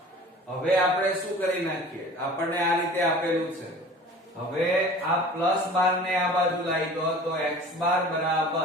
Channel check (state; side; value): normal; both; correlation 0.43